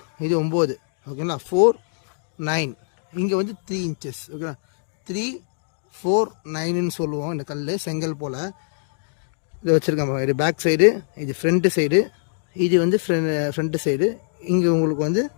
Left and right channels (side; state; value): right; silent; digital silence